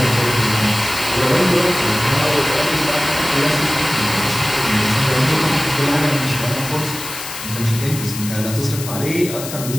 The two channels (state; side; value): noise; left; hiss, 9 dB below the sound